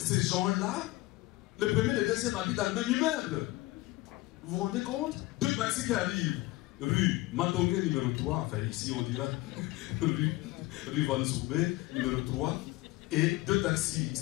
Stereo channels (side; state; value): right; quieter; 19.8 dB